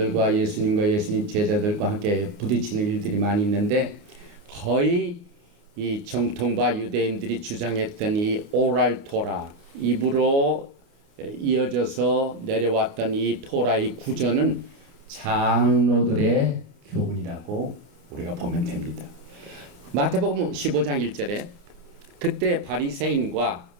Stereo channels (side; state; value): left; late; 29 ms